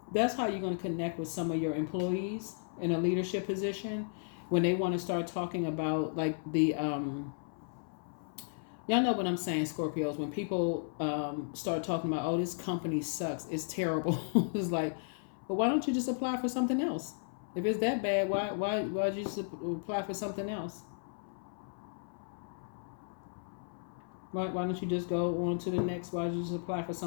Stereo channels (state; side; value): silent; right; 55 dB below the other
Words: that's how you're going to connect with some of your employees in a leadership position when they want to start talking about like the y'all know what I'm saying, Scorpios, when people start talking about, oh, this company sucks, it's terrible. It's like, but why don't you just apply for something else? If it's that bad, why'd you just apply for something else? Why don't you just go on to the next? Why don't you just apply for